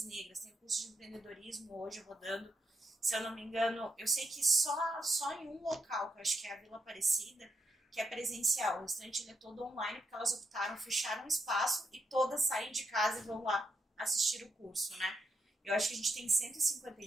negras, tem um curso de empreendedorismo hoje rodando. Se eu não me engano, eu sei que só em um local, que eu acho que é a Vila Aparecida, que é presencial. O restante ele é todo online, porque elas optaram, fecharam um espaço e todas saem de casa e vão lá assistir o curso, né? Eu acho que a gente tem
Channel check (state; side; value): normal; both; correlation 0.80